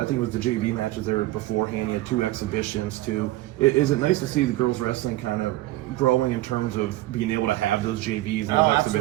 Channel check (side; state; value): left; quieter; 17.3 dB